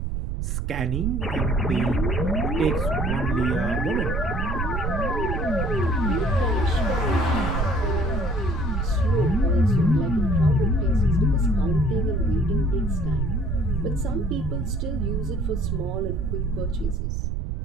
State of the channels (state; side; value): noise; right; rumble, 1 dB below the sound